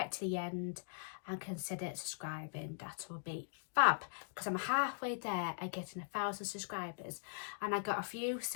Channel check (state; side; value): silent; right; digital silence